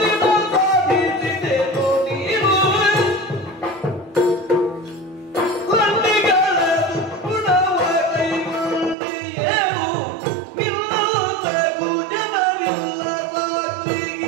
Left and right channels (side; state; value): left; drops out; at 9.0 s